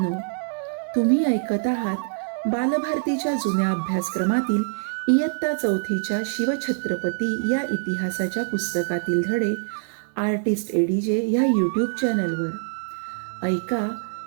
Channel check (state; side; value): silent; left; digital silence